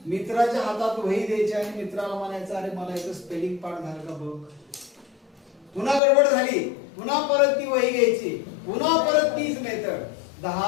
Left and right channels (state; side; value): drops out; right; at 6.0 s